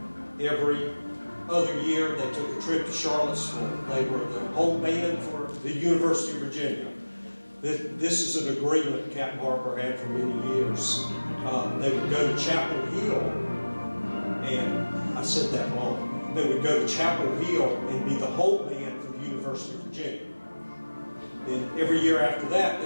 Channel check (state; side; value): inverted; both; correlation -1.00